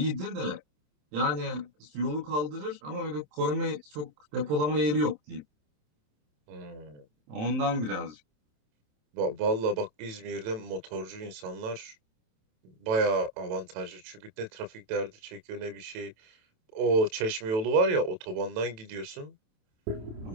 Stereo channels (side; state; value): left; late; 27 ms